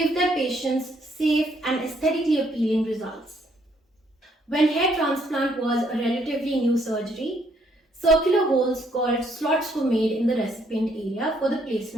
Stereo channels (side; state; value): both; normal; correlation 0.69